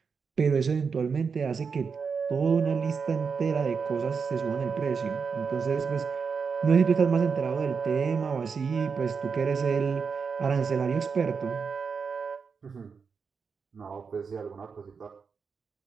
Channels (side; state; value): left; quieter; 5.6 dB